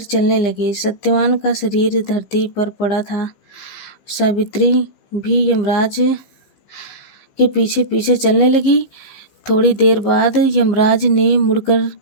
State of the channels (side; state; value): right; late; 15 ms